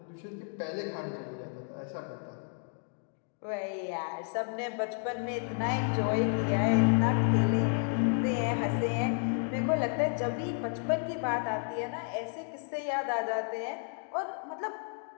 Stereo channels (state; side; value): silent; right; 57 dB below the other